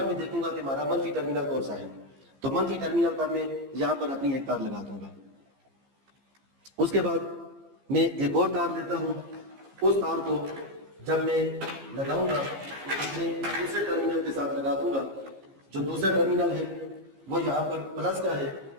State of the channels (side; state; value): left; late; 15 ms